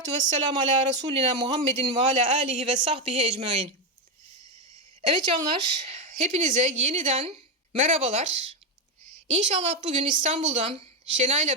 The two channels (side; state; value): both; normal; correlation 0.08